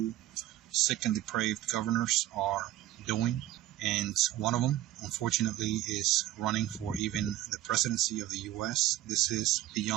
sick and depraved governors are doing. And one of them, unfortunately, is running for even the presidency of the U.S. This is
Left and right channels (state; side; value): quieter; left; 14.3 dB